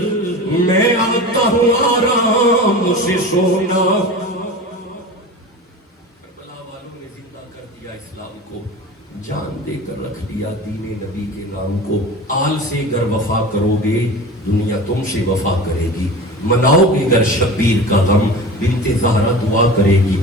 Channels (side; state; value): both; normal; correlation 0.33